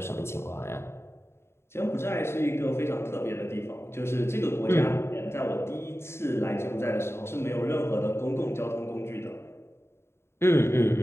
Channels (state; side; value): late; right; 0.12 ms